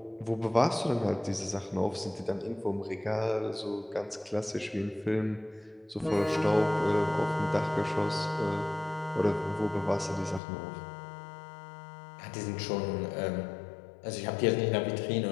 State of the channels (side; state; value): right; drops out; at 10.4 s